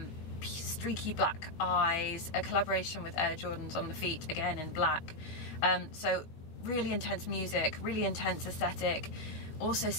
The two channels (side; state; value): right; late; 19 ms